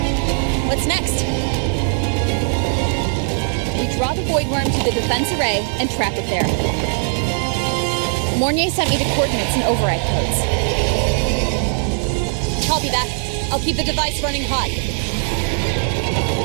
What's next? We draw the void worm to the defense array and trap it there. Mornier sent me the coordinates and override codes. Copy that. I'll keep the device running hot.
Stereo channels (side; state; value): left; silent; 56 dB below the other